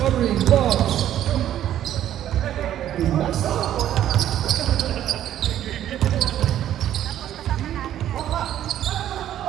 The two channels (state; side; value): quieter; left; 11.6 dB